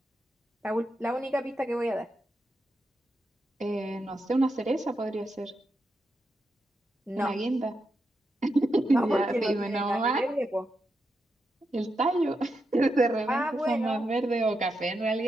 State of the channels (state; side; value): normal; both; correlation 0.85